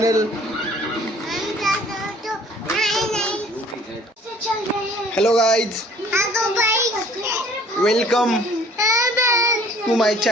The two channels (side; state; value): both; normal; correlation 0.55